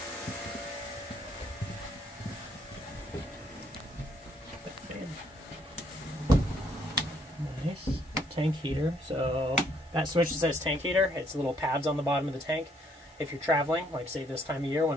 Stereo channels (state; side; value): normal; both; correlation 0.68